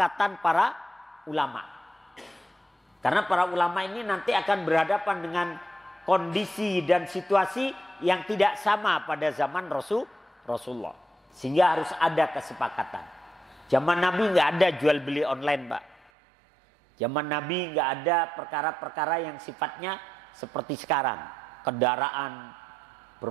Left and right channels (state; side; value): drops out; left; at 16.1 s